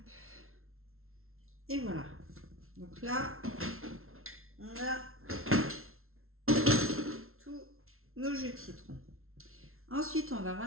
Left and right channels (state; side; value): late; left; 0.62 ms